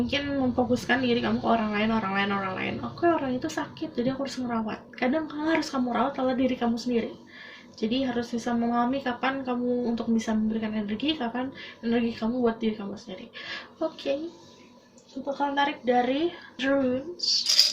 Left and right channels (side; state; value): both; identical; correlation 1.00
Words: memfokuskan diri kamu ke orang lain. Oke, orang itu sakit, jadi aku harus ngerawat. Kadang harus kamu rawat adalah diri kamu sendiri. Jadi harus bisa memahami kapan kamu untuk bisa memberikan energi, kapan energi kamu buat diri kamu sendiri. Oke, kita akan tarik dari Runes.